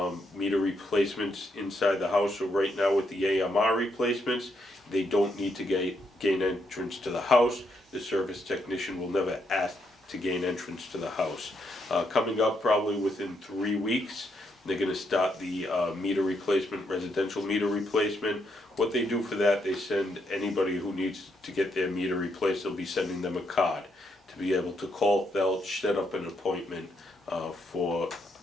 meter replacements inside the house, so right now with the AMR replacements, they don't need to gain entrance to the house. The service technician will never ask to gain entrance to the house. Coming up probably within 3 weeks, they're gonna start the meter replacement, residential meter replacement. What they do for that, they send anybody who needs to get their meter replaced, they'll be sending them a card to be able to call Felch, set up an appointment for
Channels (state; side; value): normal; both; correlation 0.77